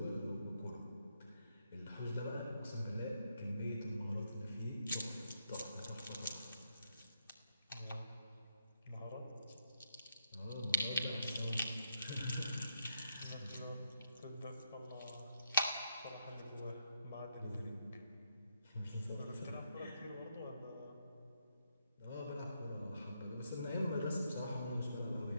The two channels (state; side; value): inverted; both; correlation -0.79